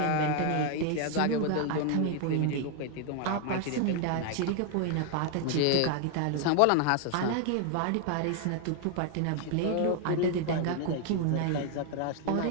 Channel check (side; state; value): both; different; correlation 0.00